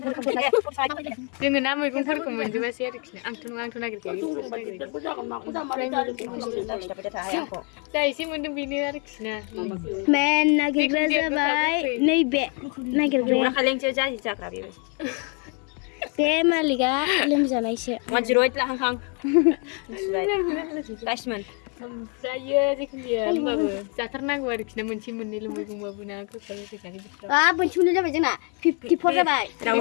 जोङो ना मैगंफोरखौ मोनजोबासै आरोखि आंथ' नागिरखायो जा एसे मोन्दों बेनो आरोखि ना मेन नागिरग्रा जाबाय नैबे नागिरग्राया बे मालिकआ लोमजानायसो 108 लाहां गासिमोन ओमफ्रायो जिखुनु जाया होमबाबो जाथारनांगौ आरोखि ना मोनसे मोननैल' मैगंबाबो ना गोखा गोखैखानि बोथोराव मोनसे मोननै जाबाय जोंना 54 जाबाय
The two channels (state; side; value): quieter; right; 35.3 dB